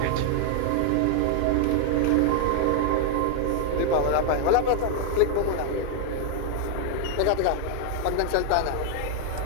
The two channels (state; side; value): different; both; correlation 0.00